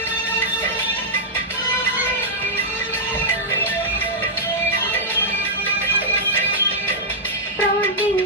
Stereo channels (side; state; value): both; normal; correlation -0.08